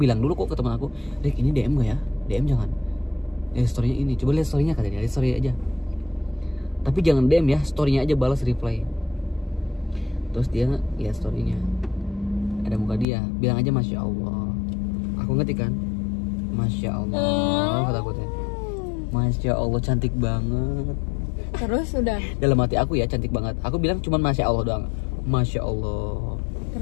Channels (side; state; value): right; drops out; at 13.1 s